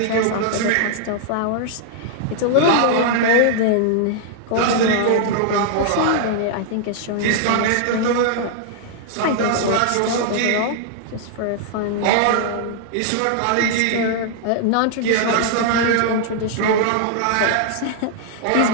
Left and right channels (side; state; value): both; different; correlation -0.01